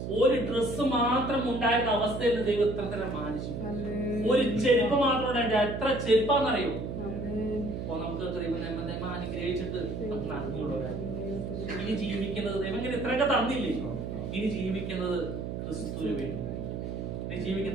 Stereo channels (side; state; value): right; noise; hum, 5 dB below the sound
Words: ഒരു ഡ്രസ്സ് മാത്രം ഉണ്ടായിരുന്ന അവസ്ഥയിൽ നിന്ന് ദൈവം എത്ര തരം മാനിച്ചു. ഒരു ചെരുപ്പ് മാത്രം ഉണ്ടായിട്ട് എത്ര ചെരുപ്പാന്നറിയോ? അപ്പൊ നമുക്ക് ദൈവം അനുഗ്രഹിച്ചിട്ട് നമുക്ക് നന്ദിയുള്ളവരാണ്. ഇനി ജീവിക്കുന്നത് ദൈവം ഇങ്ങനെ ഇത്രയൊക്കെ തന്നില്ലേ? ഇനി ജീവിക്കുന്നത് ക്രിസ്തുവിന് വേണ്ടി. ഇനി